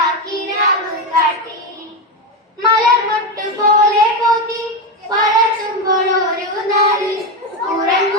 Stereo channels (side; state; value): both; normal; correlation 0.11